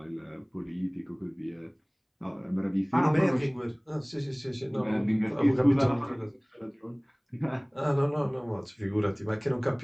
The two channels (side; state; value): both; identical; correlation 1.00